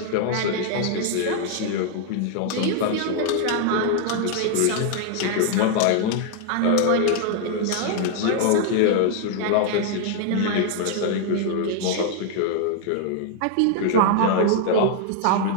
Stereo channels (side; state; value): both; different; correlation 0.00